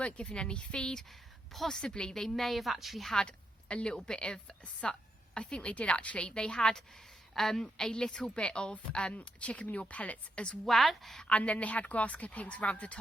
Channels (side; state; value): both; normal; correlation 0.82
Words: given any feed. Possibly they may have actually had a little bit of, I think they did actually. They had a little bit of chicken manure pellets as well, and then they had grass clippings around the